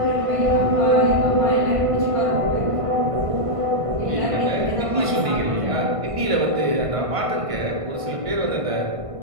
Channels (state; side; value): late; left; 1.5 ms